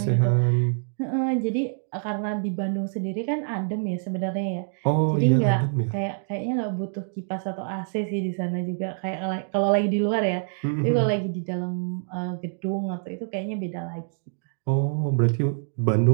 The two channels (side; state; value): left; silent; digital silence